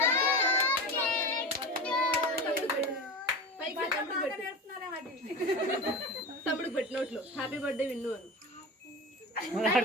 తమ్ముడికి పెట్టినట్లు హ్యాపీ బర్త్డే విన్ను అను.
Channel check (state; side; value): normal; both; correlation 0.28